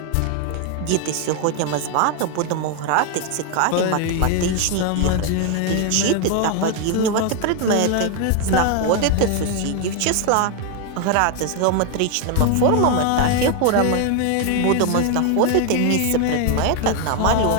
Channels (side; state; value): both; different; correlation 0.01